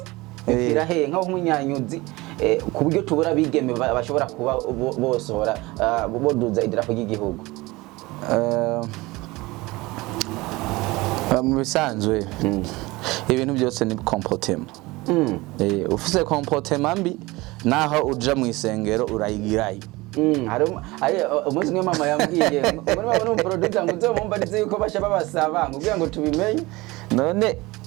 kirahe nk'umuhinyanyuzi ku buryo tubura abigeme bashobora kuba bosohora boduza idarapo ry'igihugu mu bisanzwe ibintu byose ni comportement ufise comportement mbi naho uja mu isengero urayigirayo hari umunsi umwe mama yambwiye muri bano producer ngo uzomumba ndize yuko basha babasaba ngo ngo tubimenye none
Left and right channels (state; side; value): quieter; left; 21.5 dB